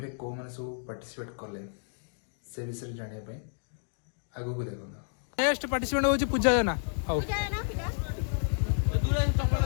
रे को माने सब पार्टिसिपेट कले से विषय जानिया आगो को देखो नेक्स्ट पार्टिसिपेंट होची पूजा जना हाउ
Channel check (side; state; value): right; silent; digital silence